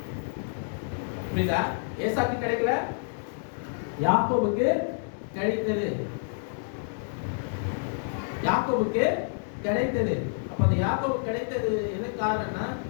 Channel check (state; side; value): silent; right; digital silence